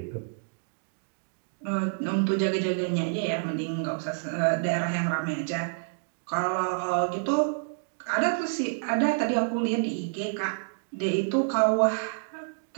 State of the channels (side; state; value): left; silent; digital silence